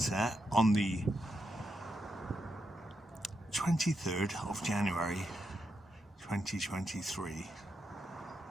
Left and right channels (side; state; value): both; normal; correlation 0.84